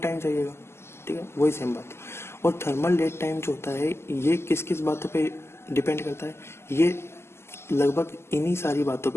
चाहिएगा। ठीक है, वही सेम बात। और थर्मल डेट टाइम जो होता है ये किस किस बातों पे डिपेंड करता है? ये लगभग इन्हीं सारी बातों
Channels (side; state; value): right; late; 0.12 ms